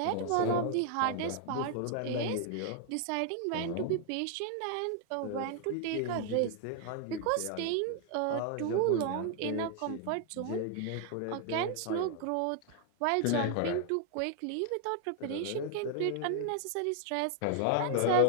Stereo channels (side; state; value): both; different; correlation 0.00